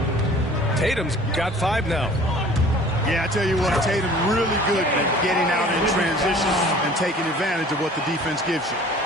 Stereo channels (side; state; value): both; normal; correlation 0.48